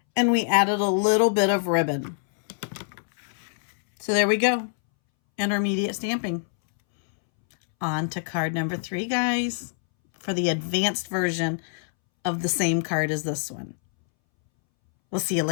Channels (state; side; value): silent; right; 62 dB below the other